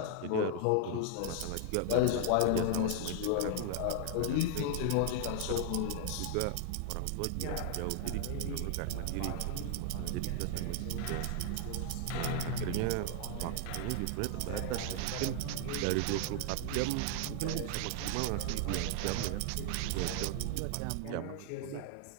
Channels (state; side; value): different; both; correlation 0.00